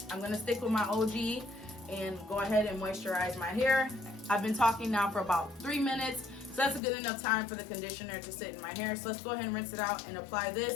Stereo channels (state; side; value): drops out; right; at 6.8 s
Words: gonna stick with my OG and go ahead and moisturize my hair. I've been talking now for about 3 minutes. So that's a good enough time for the conditioner to sit in my hair. So let's go ahead and rinse it out and apply